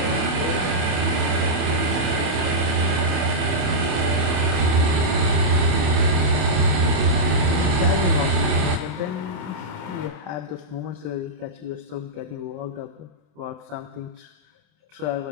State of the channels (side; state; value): left; late; 27 ms